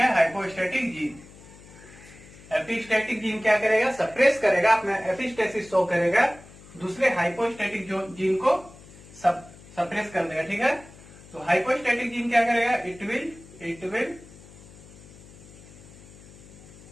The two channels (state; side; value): noise; left; hum, 21 dB below the sound